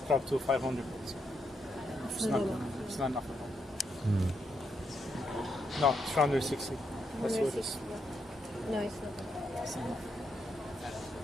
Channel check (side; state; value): both; normal; correlation 0.80